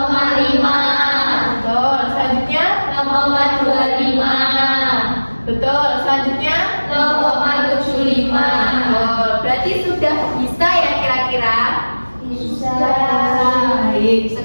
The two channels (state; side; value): inverted; both; correlation -1.00